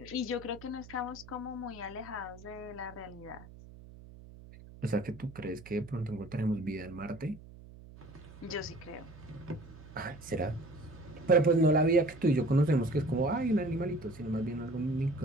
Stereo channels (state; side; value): noise; right; hum, 18 dB below the sound